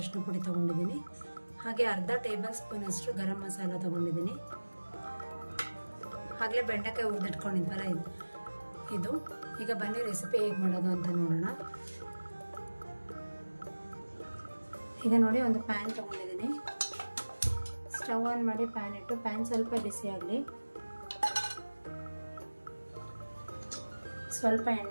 ಪುಡಿ ತೊಗೊಂಡಿದ್ದೀನಿ. ಹಾಗೆ ಅರ್ಧ ಟೇಬಲ್ ಸ್ಪೂನಷ್ಟು ಗರಂ ಮಸಾಲ ತೊಗೊಂಡಿದ್ದೀನಿ. ಆಗಲೇ ಬೆಂಡೆಕಾಯಿ ಹುರಿದಿಟ್ಕೊಂಡಿದ್ವಲ್ಲ ಇದು. ಈಗ ಬನ್ನಿ ರೆಸಿಪಿ ಹೇಗೆ ಮಾಡೋದು ಅಂತ ನೋಡೋಣ. ಈಗ ನೋಡಿ ಒಂದು ಪ್ಯಾನ್ ತೊಗೊಂಡಿದ್ದೀನಿ. ಸ್ಟವ್ ಆನ್ ಮಾಡಿ ಪ್ಯಾನ್ ಇಟ್ಟು ಪ್ಯಾನ್ ಸ್ವಲ್ಪ ಬಿಸಿ ಆಗಲಿ. ಸ್ವಲ್ಪ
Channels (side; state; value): both; inverted; correlation -1.00